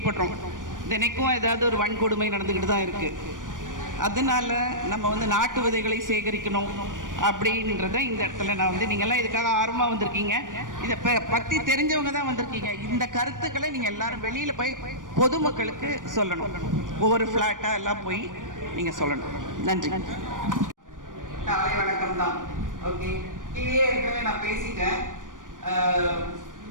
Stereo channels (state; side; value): late; left; 0.88 ms